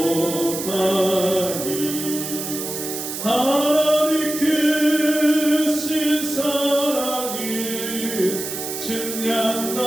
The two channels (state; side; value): noise; right; hiss, 6 dB below the sound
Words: 하나님 크신 사랑은